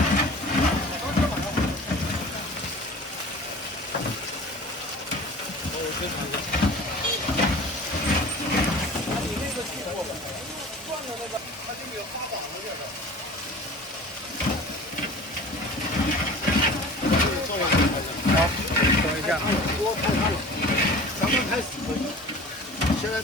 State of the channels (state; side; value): normal; both; correlation 0.41